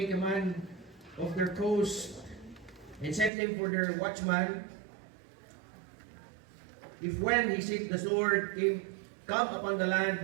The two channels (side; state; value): left; drops out; at 3.3 s